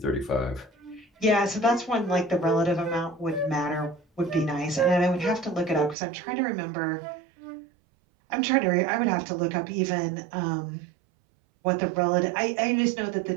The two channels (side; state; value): left; drops out; at 6.0 s